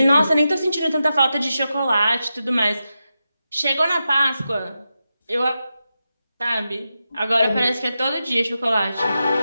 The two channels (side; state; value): both; inverted; correlation -0.90